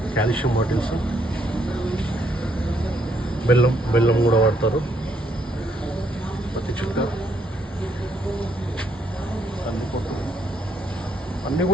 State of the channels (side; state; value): both; normal; correlation 0.72